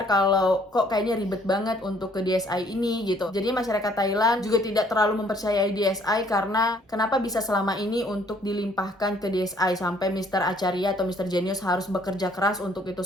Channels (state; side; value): normal; both; correlation 0.62